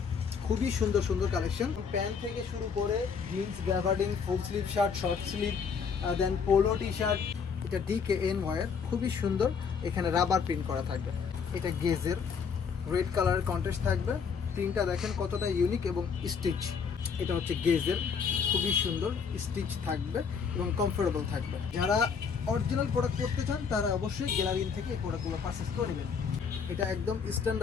খুবই সুন্দর সুন্দর কালেকশন, প্যান্ট থেকে শুরু করে jeans, gabardine, full sleeve shirt, short sleeve, then polo T shirt. এটা DKN ওয়্যার, খুবই সুন্দর, এখানে রাবার প্রিন্ট করা থাকবে। এটা গেজের রেড কালারের কন্ট্রাস্ট থাকবে, প্রিন্টটা দেখেন কতটা ইউনিক এবং স্টিচ। এটা হচ্ছে গেজের, খুবই সুন্দর, স্টিচ থাকবে এবং কমফোর্টেবল থাকবে। যারা অরিজিনাল প্রোডাক্ট করতে চান তারা অবশ্যই গ্যালারিন থেকে এই প্রোডাক্টগুলো পারচেস করে নেবেন। এটা একদম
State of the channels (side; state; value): right; quieter; 6.1 dB